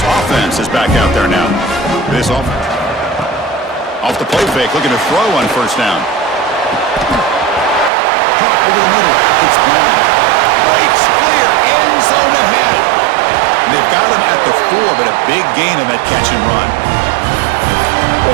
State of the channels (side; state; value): left; drops out; at 7.9 s